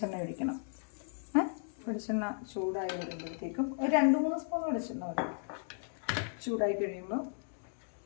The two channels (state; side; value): silent; right; digital silence